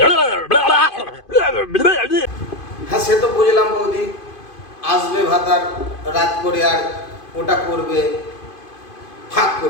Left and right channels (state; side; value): late; right; 2.5 ms